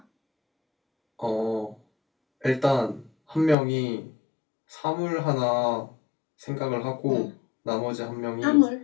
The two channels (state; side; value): drops out; right; at 3.6 s